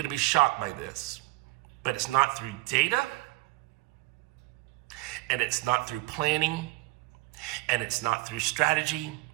be shocked by this, but it's not through data, and it's not through planning, and it's not through strategy,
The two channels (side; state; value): left; quieter; 21.2 dB